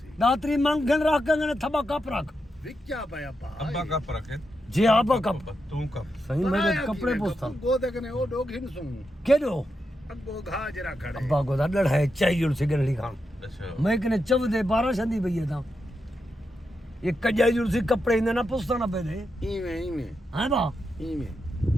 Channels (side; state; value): both; normal; correlation 0.86